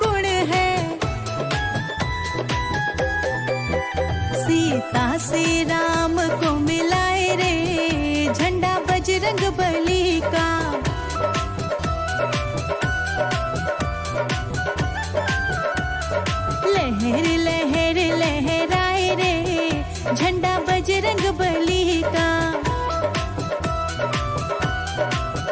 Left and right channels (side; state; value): both; identical; correlation 1.00